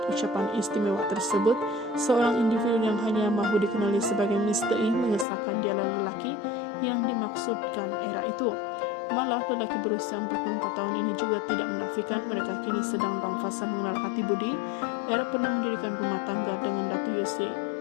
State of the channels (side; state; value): right; drops out; at 5.2 s